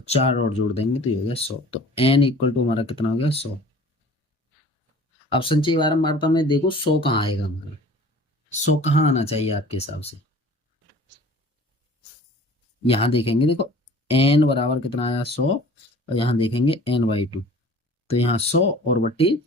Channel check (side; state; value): both; normal; correlation 0.46